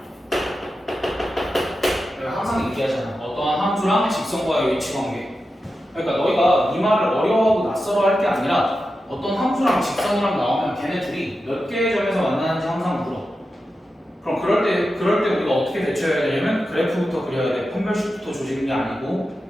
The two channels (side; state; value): both; normal; correlation 0.91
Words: 내가 항상 얘기하잖아. 어떠한 함수랑 직선과의 위치 관계. 그러니까 너희가 이 말을 어려워하고 낯설어 할 게 아니라 어떤 함수랑 직선이랑 나오면 걔네 둘이 몇 개의 점에서 만나는지 항상 물어. 그럼 그럴 때 우리가 어떻게 대처해야 되냐면 그래프부터 그려야 돼. 판별식부터 조지는 게 아니고.